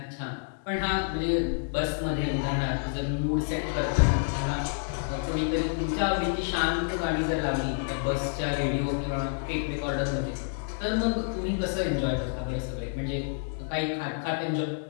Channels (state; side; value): silent; right; digital silence